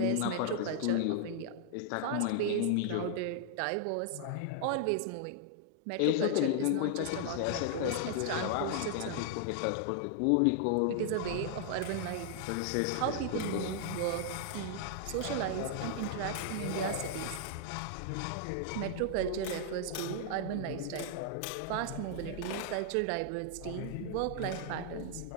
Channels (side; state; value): both; different; correlation -0.01